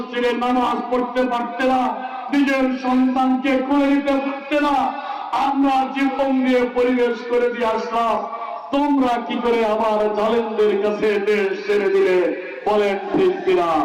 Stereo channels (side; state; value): both; identical; correlation 1.00